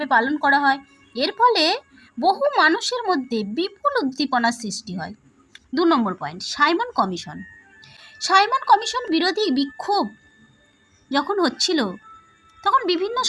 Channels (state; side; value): identical; both; correlation 1.00